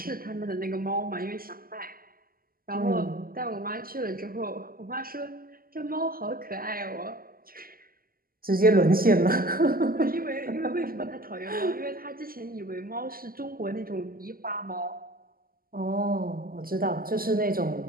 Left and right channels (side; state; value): left; late; 0.42 ms